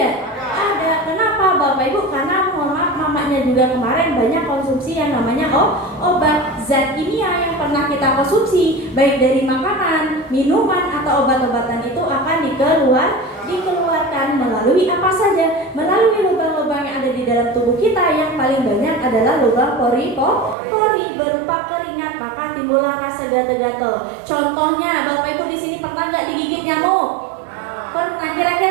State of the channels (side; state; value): left; drops out; at 20.6 s